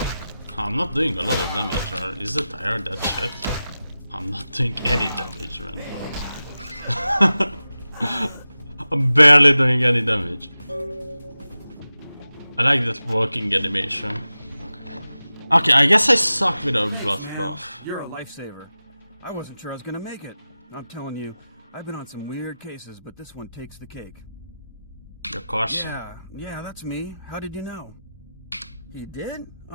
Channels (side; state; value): both; inverted; correlation -0.94